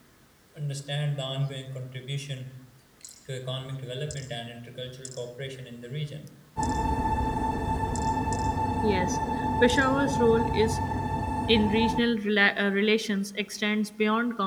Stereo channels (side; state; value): both; identical; correlation 1.00